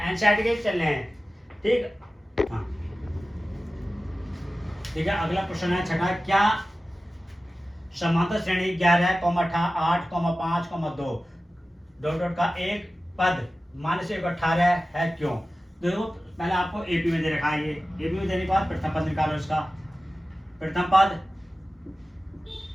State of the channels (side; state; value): both; normal; correlation 0.95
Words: के चल रहे हैं। ठीक, हाँ ठीक है, अगला क्वेश्चन है छठा, क्या समांतर श्रेणी 11, 8, 5, 2 डॉट डॉट का एक पद माइनस 18 है क्यों। देखो पहले आपको एपी में दे रखा है, ये एपी में देने के बाद प्रथम पद निकालो, इसका प्रथम